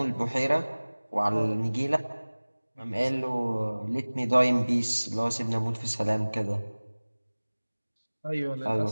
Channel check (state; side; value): inverted; both; correlation -1.00